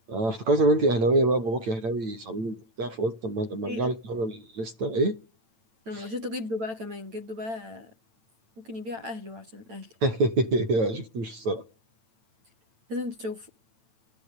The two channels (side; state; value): left; late; 8.9 ms